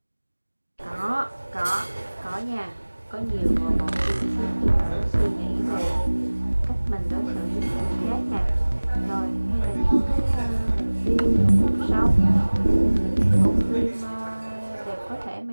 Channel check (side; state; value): both; inverted; correlation -1.00